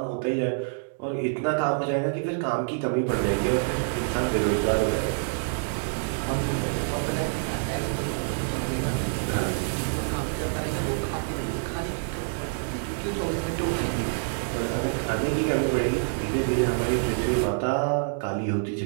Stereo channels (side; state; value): left; silent; digital silence